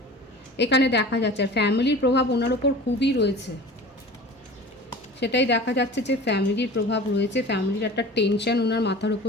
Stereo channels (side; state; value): both; normal; correlation 0.39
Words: এখানে দেখা যাচ্ছে আর ফ্যামিলির প্রভাব ওনার ওপর খুবই রয়েছে, সেটাই দেখা যাচ্ছে যে ফ্যামিলির প্রভাব রয়েছে, ফ্যামিলির একটা টেনশন ওনার মাথার